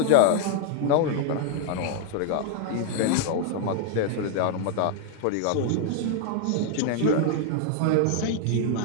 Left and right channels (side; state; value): both; different; correlation 0.00